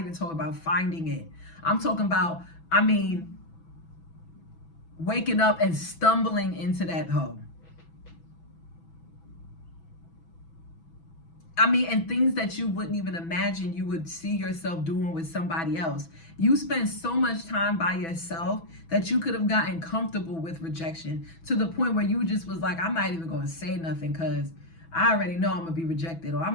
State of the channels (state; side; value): late; right; 6.1 ms